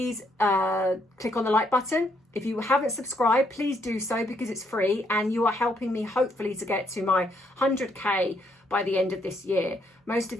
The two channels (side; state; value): both; normal; correlation 0.73